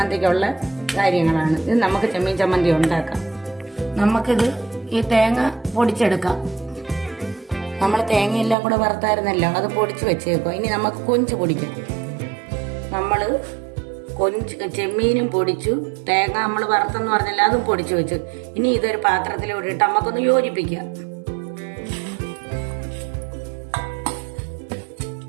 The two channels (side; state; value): left; drops out; at 8.6 s